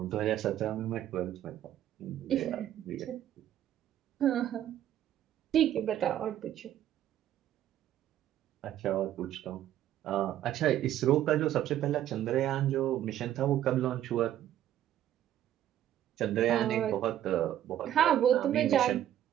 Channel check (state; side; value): quieter; left; 11.7 dB